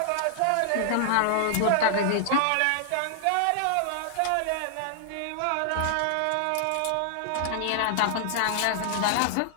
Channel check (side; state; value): both; different; correlation -0.01